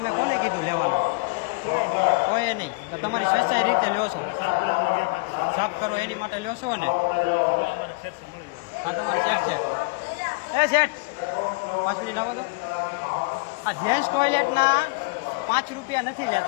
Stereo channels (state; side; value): quieter; right; 29.8 dB